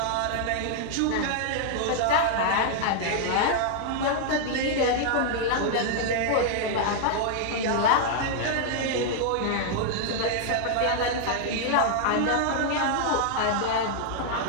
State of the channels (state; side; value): different; both; correlation 0.00